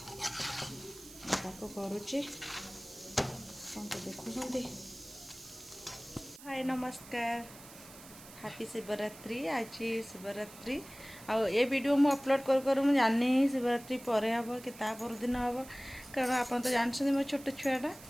करुच्ची कौन तो देखुं। हाय नमस्कार हैप्पी शिवरात्रि आज शिवरात्रि आउ ए वीडियो मु अपलोड कर मुझे जानी शिवरात्रि पर हम कि दिन हम कारण आप तो जानते मो छोट छुआटा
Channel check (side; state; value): right; noise; hiss, 18 dB below the sound